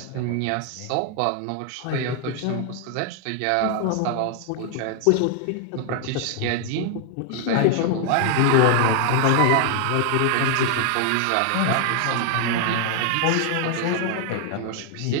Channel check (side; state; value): both; different; correlation 0.00